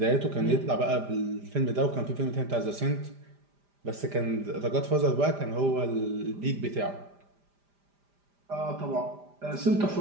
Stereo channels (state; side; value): late; left; 5.0 ms